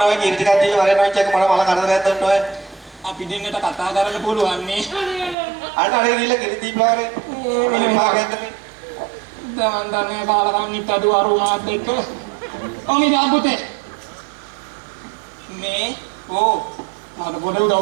ඔය කිරි ටිකක් දීලා වරෙන් ඔය චෙක් මල කරදරයක් දෙන්න ඔය අපි දෙන්නට කතා කරන්න පුළුවන් නේ අන්න අර ගිහලා කිරි දීපලා වරේ මෙලි මාගෙන්ද දැන් දන්නේ කාලකන්නිත් අද වරුණාත් එක්ක ඔනි දාපුතේ මේ මට පොඩ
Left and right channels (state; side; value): drops out; left; at 5.4 s